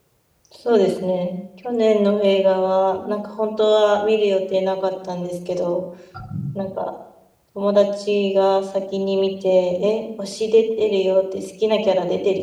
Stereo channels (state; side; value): identical; both; correlation 1.00